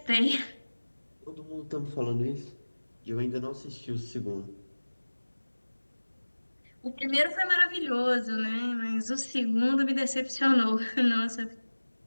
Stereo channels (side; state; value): both; inverted; correlation -1.00